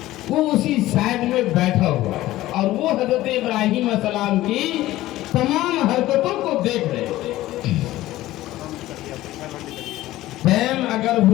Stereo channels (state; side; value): quieter; right; 16.0 dB